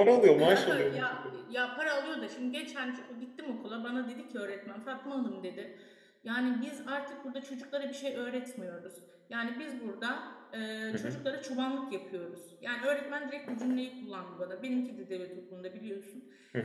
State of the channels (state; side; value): identical; both; correlation 1.00